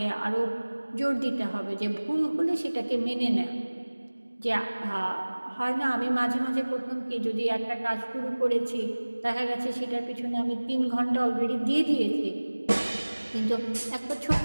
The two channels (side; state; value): both; inverted; correlation -1.00